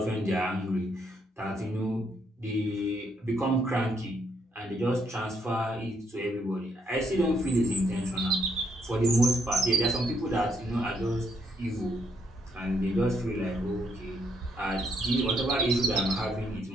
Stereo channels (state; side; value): normal; both; correlation 0.73